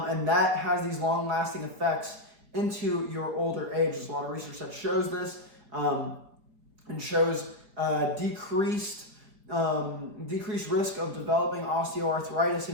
that has these long-lasting effects into your older age. There's a lot of research that shows this, and shows decreased risk of developing osteoarthritis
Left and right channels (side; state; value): left; late; 4.8 ms